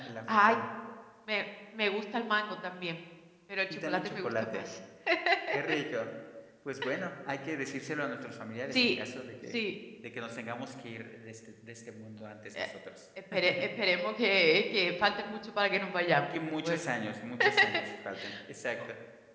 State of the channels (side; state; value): both; identical; correlation 1.00